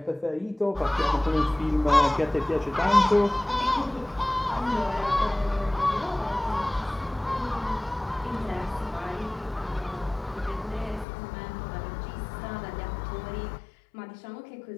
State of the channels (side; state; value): right; drops out; at 11.1 s